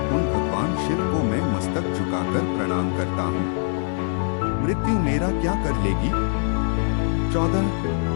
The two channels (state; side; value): silent; right; 63 dB below the other